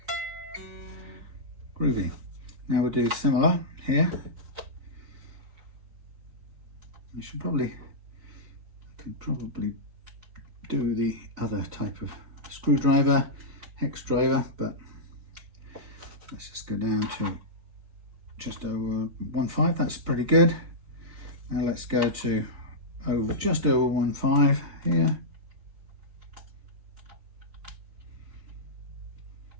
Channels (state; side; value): late; left; 4.0 ms